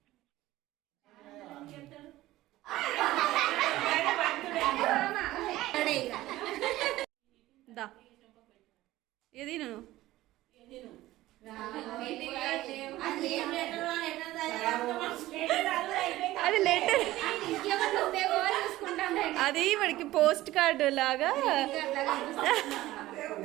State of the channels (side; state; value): left; quieter; 16.5 dB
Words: దా ఏది నేను అది లెటర్, అది వాడికి పోస్ట్ కార్డు లాగా.